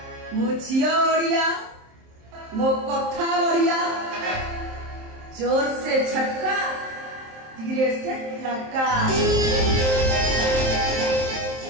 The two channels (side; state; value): left; late; 27 ms